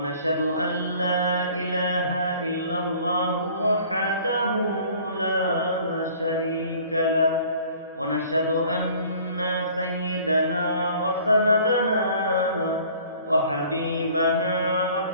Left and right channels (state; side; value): inverted; both; correlation -0.52